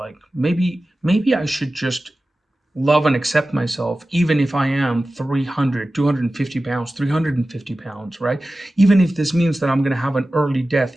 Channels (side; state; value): both; normal; correlation 0.95